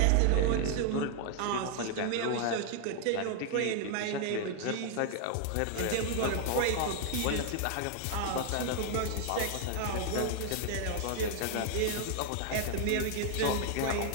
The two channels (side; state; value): both; different; correlation 0.00